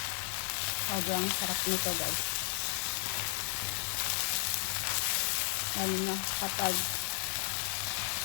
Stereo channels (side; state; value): right; silent; digital silence